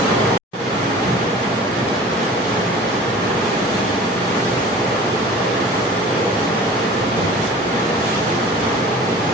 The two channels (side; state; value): both; normal; correlation 0.43